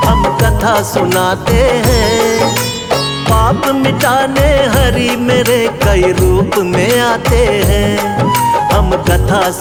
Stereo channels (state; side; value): identical; both; correlation 1.00